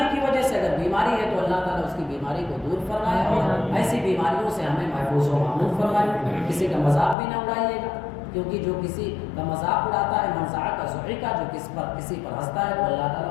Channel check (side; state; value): right; drops out; at 7.2 s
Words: کی وجہ سے اگر بیماری ہے تو اللہ تعالیٰ اس کی بیماری کو دور فرمائے اور ایسی بیماریوں سے ہمیں محفوظ و معمون فرمائے۔ کسی کا مذاق بھی نہ اڑائیے گا، کیونکہ جو کسی کا مذاق اڑاتا ہے منزع کا ضحی کا، جو کسی پر ہنستا ہے تو اللہ